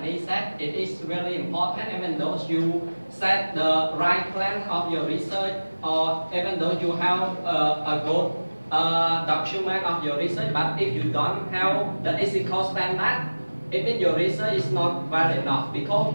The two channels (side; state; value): both; inverted; correlation -1.00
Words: said, it is really important, even though you set the right plan of your research, or even though you have a good document of your research, but if you don't have the ethical standard, it means your research is not well enough, because